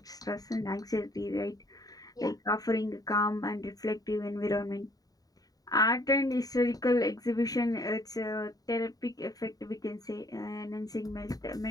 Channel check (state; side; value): late; right; 0.18 ms